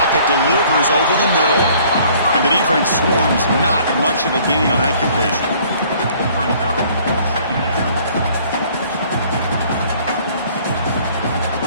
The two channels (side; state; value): both; inverted; correlation -0.57